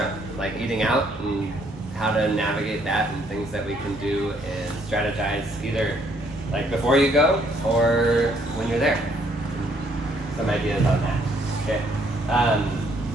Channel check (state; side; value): normal; both; correlation 0.67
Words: like eating out and how to navigate that and things that we can do and strategize either like before you go or when you're there. Some ideas on that. Okay.